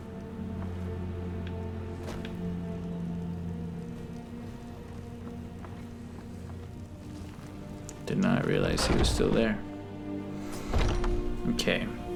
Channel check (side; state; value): both; identical; correlation 1.00